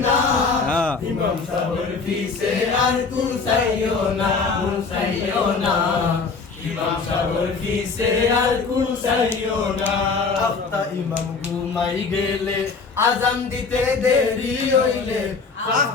না ইমাম সাবর ফিসে আর কুসাইয়না কুসাইয়না ইমাম সাবর ফিসে আর কুসাইয়না আফতা ইমাম ঘুমাই গেলে আজান দিতে দেরি হইলে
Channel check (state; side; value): quieter; right; 4.7 dB